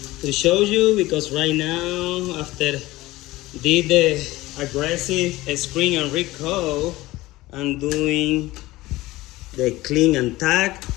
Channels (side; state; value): right; quieter; 18.6 dB